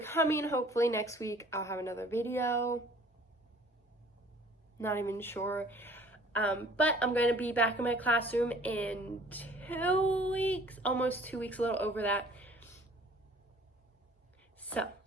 Hopefully next week I'll have another video. Not even sure. But I'm going to be back in my classroom in 2 weeks, almost 2 weeks, a little over that. So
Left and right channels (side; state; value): both; normal; correlation 0.53